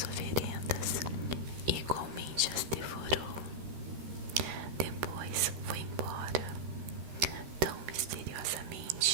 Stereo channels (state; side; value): late; left; 13 ms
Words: oferendas e igualmente as devorou. Depois foi embora, tão